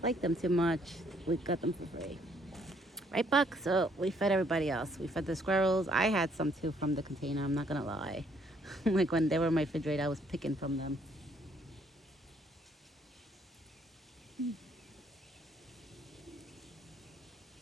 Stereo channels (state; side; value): normal; both; correlation 0.67